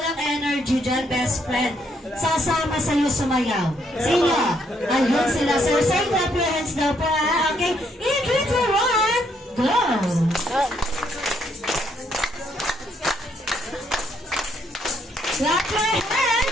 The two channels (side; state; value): both; normal; correlation 0.72